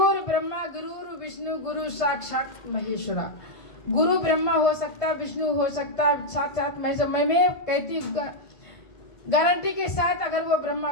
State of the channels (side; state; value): right; late; 1.5 ms